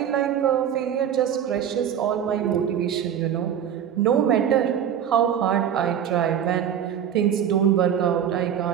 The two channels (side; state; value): left; quieter; 9.2 dB